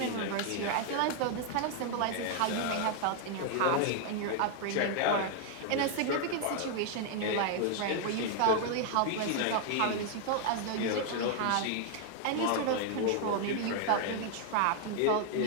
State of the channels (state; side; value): different; both; correlation 0.00